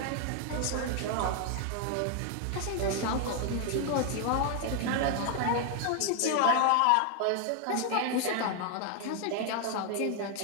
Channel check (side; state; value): both; different; correlation 0.00